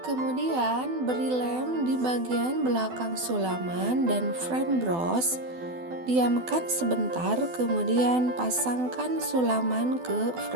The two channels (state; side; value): late; left; 12 ms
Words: Kemudian beri lem di bagian belakang sulaman dan frame bros. Diamkan sebentar, kemudian pasangkan sulaman ke